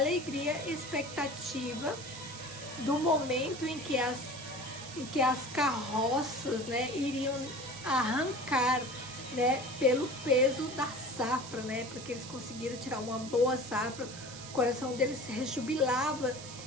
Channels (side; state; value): right; noise; hiss, 13 dB below the sound